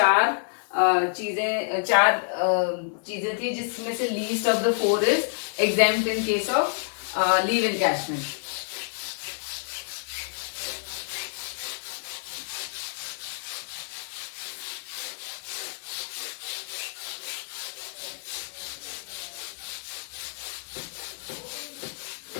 चार चीजें थी, जिसमें से least of the 4 is exempt in case of leave encashment.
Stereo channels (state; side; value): silent; right; digital silence